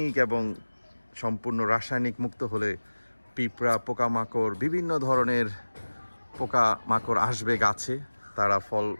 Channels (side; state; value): both; inverted; correlation -1.00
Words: এবং সম্পূর্ণ রাসায়নিক মুক্ত হলে পিঁপড়া, পোকামাকড়, বিভিন্ন ধরনের পোকামাকড় আসবে গাছে,